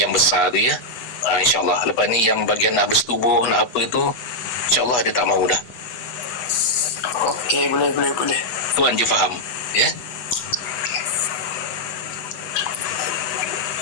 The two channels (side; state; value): right; late; 8.0 ms